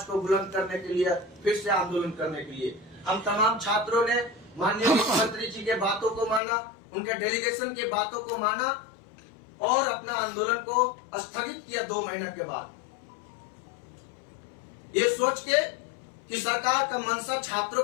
को बुलंद करने के लिए, फिर से आंदोलन करने के लिए। हम तमाम छात्रों ने माननीय मुख्यमंत्री जी के बातों को माना, उनके डेलीगेशन के बातों को माना और अपना आंदोलन को स्थगित किया 2 महीने के बाद, ये सोच के कि सरकार का मंशा छात्रों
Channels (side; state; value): right; drops out; at 6.4 s